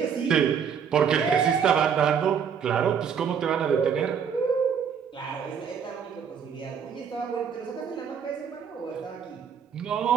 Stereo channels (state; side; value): quieter; left; 7.3 dB